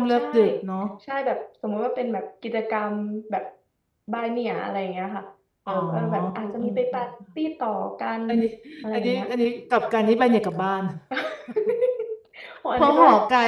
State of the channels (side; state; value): both; identical; correlation 1.00